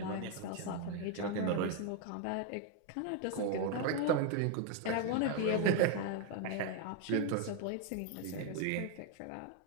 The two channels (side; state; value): both; different; correlation 0.01